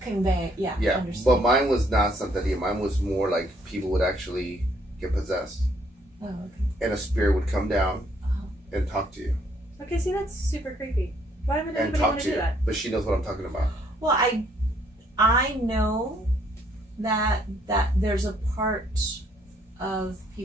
Convey, Yeah, understand. but mine was not Santeria. Mine was more like people would actually get possessed. Oh, okay. and a spirit would come down and talk to you. Okay, see, that's super creepy. Why would And anybody talk want to to do you. that? But she knows what I'm talking about. Well, I know that there's a part of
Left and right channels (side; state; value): both; normal; correlation 0.67